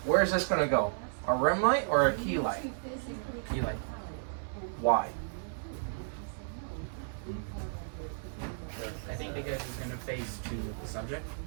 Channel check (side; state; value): left; silent; digital silence